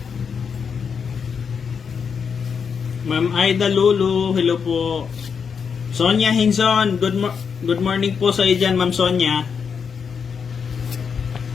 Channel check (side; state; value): right; quieter; 6.4 dB